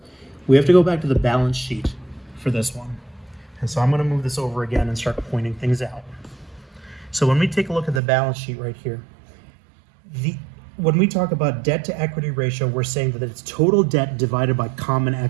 We have to go back to the balance sheet for this one. And so I'm going to move this over again and start pointing things out. So when we take a look at the balance sheet right here, when we talk about debt to equity ratio, we're saying that it's total debt divided by common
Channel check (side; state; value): left; drops out; at 8.0 s